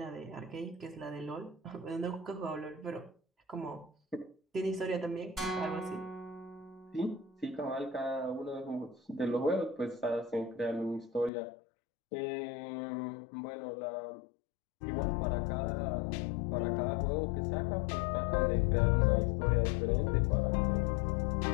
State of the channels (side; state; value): right; drops out; at 11.3 s